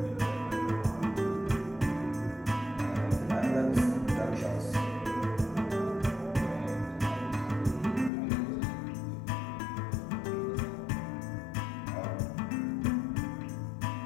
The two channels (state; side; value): drops out; right; at 8.1 s